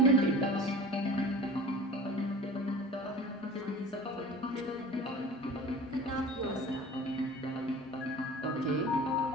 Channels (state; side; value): normal; both; correlation 0.40